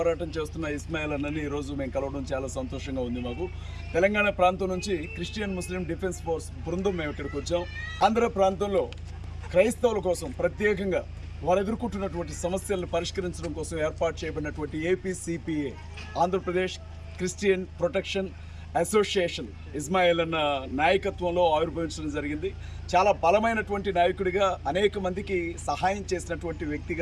చేస్తున్న ఇస్మాయిల్ అన్నని ఈరోజు మేము కలవడం చాలా సంతోషంగా ఉంది. మాకు తెలంగాణ ప్రాంతం నుంచి క్రిస్టియన్ ముస్లిం డిఫెన్స్ ఫోర్స్ బృందం మేము ఇక్కడికి వచ్చాం. ఆంధ్ర ప్రాంతంలో క్రైస్తవుల కోసం ప్రత్యేకంగా వారు ఎదుర్కొంటున్నటువంటి సమస్యలను పరిష్కరించడం కోసం ఏర్పాటు చేయబడినటువంటి APCPA Andhra Pradesh christian protection association Ismail అన్న నాయకత్వంలో ఆవిర్భవించడం జరిగింది. చాలా బలమైనటువంటి నాయకుడిగా, అనేక మందికి సహాయం చేసినటువంటి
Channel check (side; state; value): both; identical; correlation 1.00